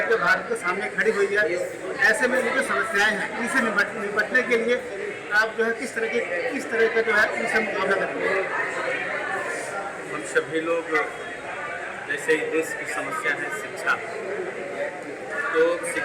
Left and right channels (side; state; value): both; identical; correlation 1.00